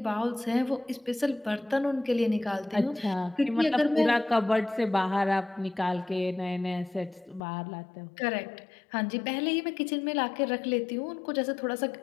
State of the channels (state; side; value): drops out; right; at 7.4 s